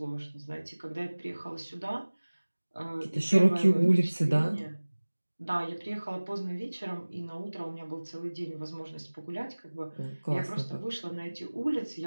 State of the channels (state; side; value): inverted; both; correlation -1.00